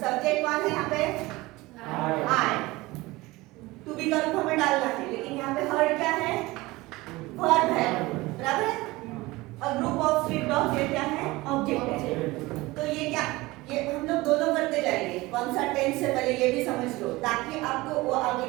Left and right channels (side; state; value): left; quieter; 20.7 dB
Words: कौन है यहाँ पे, आई, टू बी का रूप हमें डालना है, लेकिन यहाँ पे हर्ड क्या है, वर्ब है, बराबर है। और ग्रुप ऑफ स्ट्रीट डॉग्स ये क्या है, ऑब्जेक्ट है। तो ये क्या, ये हम लोग दोनों करते जाएंगे, कौन सा टेंस से पहले ये भी समझ लो, ताकि आपको वो आगे